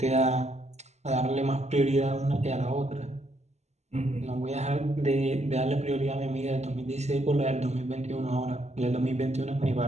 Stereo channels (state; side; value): late; left; 0.33 ms